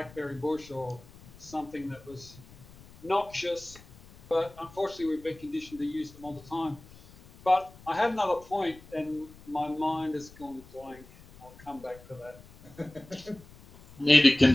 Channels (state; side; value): noise; left; rumble, 22 dB below the sound